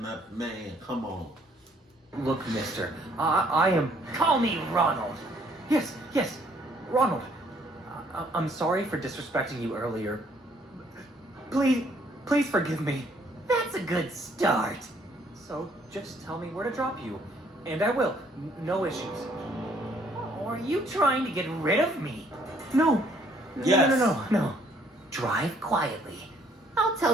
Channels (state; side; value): normal; both; correlation 0.64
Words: up, man. Come on. Look, mister, I am... Call me Ronald. Yes, Ronald. I'm sorry for disrespecting you earlier. Please forgive me. That's a good start. So just tell me where to drop you, and I will. No issues. Or are you trying to get rid of me? No. Yes. No. Drive quietly. I'll